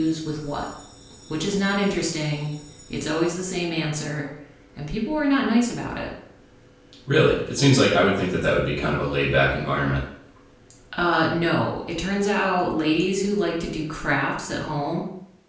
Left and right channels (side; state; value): both; identical; correlation 1.00